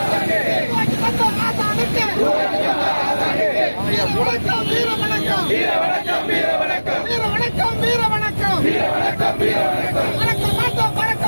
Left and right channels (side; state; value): both; inverted; correlation -1.00